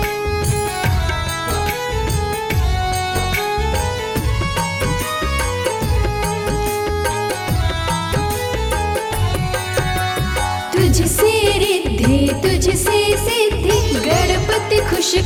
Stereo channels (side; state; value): both; identical; correlation 1.00